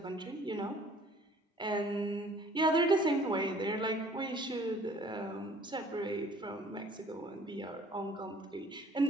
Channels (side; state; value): both; normal; correlation 0.54